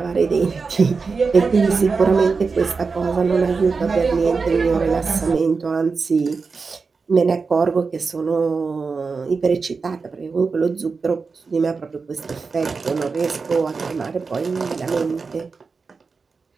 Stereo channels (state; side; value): quieter; left; 4.7 dB